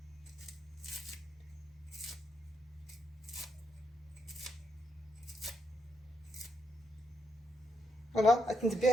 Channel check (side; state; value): both; normal; correlation 0.79